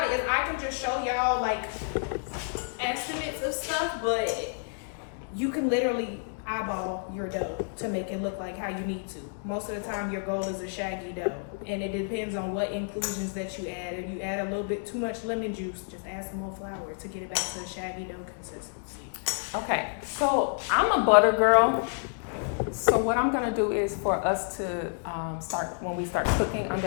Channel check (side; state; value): right; silent; 58 dB below the other